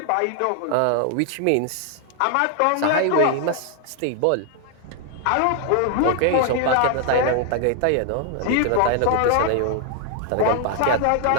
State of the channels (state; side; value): different; both; correlation 0.00